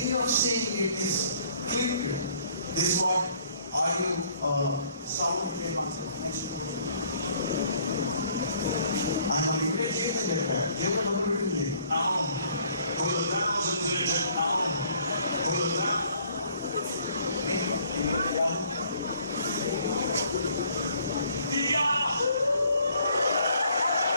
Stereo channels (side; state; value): both; inverted; correlation -0.61